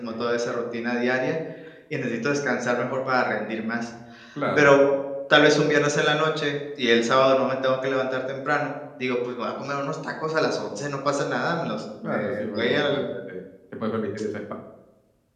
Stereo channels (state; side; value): identical; both; correlation 1.00